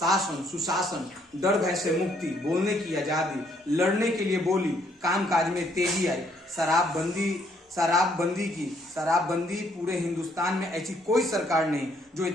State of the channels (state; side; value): normal; both; correlation 0.68